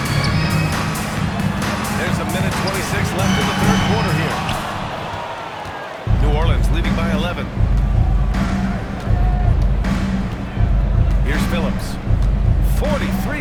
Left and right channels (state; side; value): identical; both; correlation 1.00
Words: There's a minute 26 left in the third quarter here. New Orleans leading by 11. Here's Phillips. 43